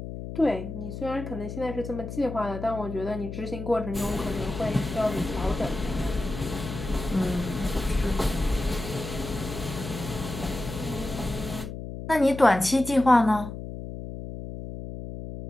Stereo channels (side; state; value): left; noise; hum, 8 dB below the sound